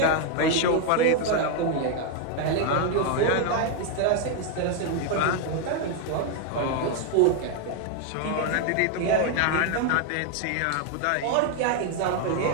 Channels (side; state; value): both; different; correlation 0.00